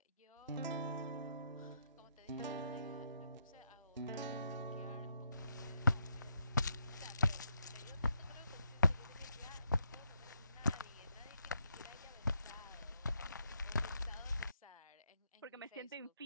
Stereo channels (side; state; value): both; inverted; correlation -0.78